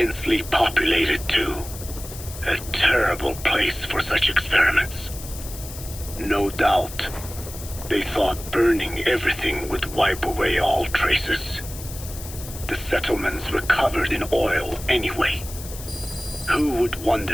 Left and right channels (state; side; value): noise; left; hiss, 13 dB below the sound